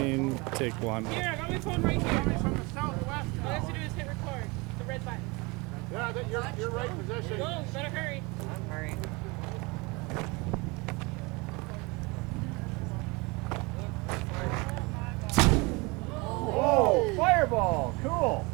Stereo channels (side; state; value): left; quieter; 26.6 dB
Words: take one. Here, I got my phone right here. From the southwest. All I have to do is hit record. The red button. Yeah, you're right position. Go, better hurry. I'm hurrying. Oh, fireball. Cool.